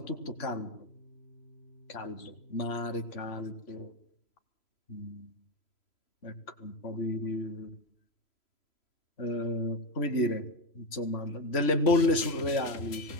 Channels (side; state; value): right; late; 3.0 ms